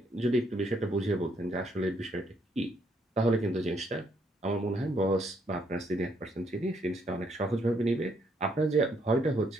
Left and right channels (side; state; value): both; normal; correlation 0.72